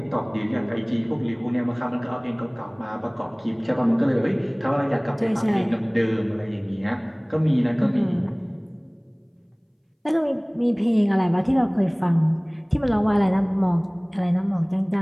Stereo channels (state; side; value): identical; both; correlation 1.00